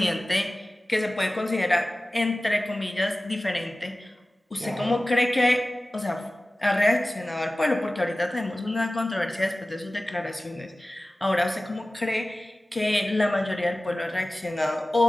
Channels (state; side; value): normal; both; correlation 0.97